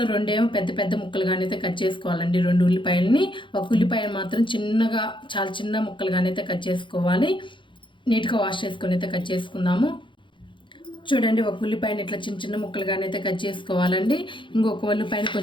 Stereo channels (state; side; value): late; right; 0.24 ms